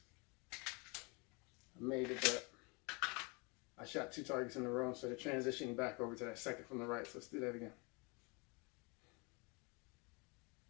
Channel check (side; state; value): right; quieter; 30.2 dB